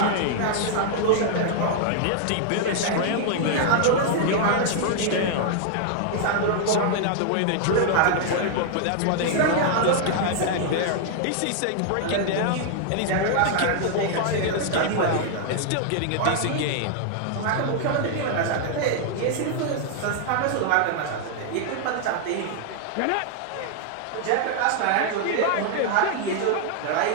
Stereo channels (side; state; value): both; different; correlation -0.01